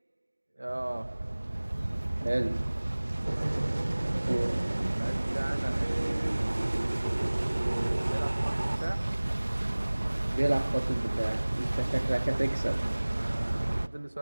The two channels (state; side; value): inverted; both; correlation -1.00